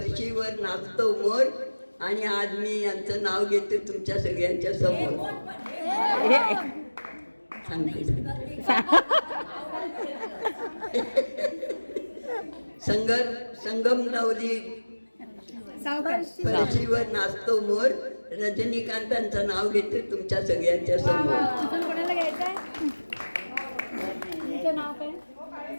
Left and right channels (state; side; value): inverted; both; correlation -1.00